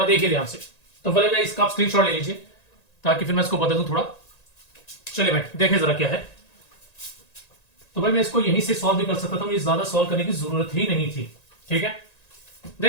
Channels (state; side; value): late; right; 1.9 ms